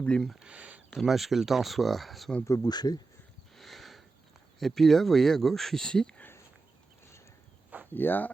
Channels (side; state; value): left; quieter; 3.9 dB